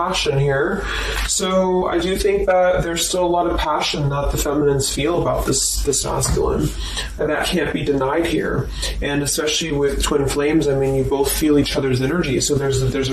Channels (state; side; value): identical; both; correlation 1.00